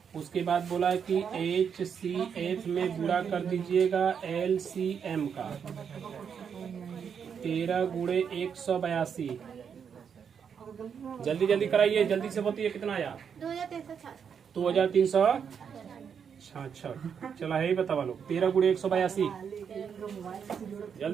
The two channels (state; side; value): quieter; left; 7.2 dB